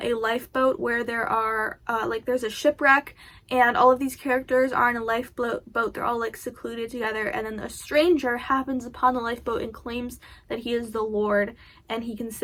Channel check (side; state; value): both; identical; correlation 1.00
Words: a lifeboat where there are like there's a shipwreck, and all of these characters are in a lifeboat. They're all like secluded together, and then a stranger happens upon the lifeboat and claims that he is the Lord and he can